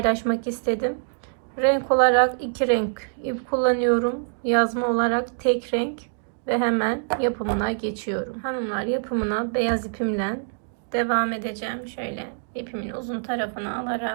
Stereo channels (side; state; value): left; silent; digital silence